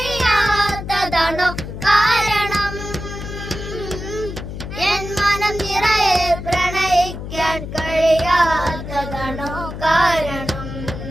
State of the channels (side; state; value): left; noise; hum, 8 dB below the sound